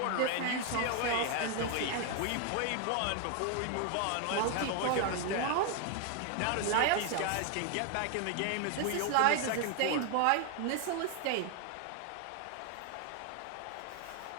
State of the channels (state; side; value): different; both; correlation 0.00